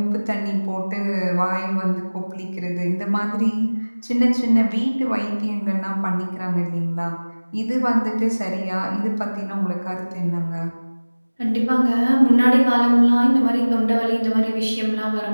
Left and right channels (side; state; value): both; inverted; correlation -1.00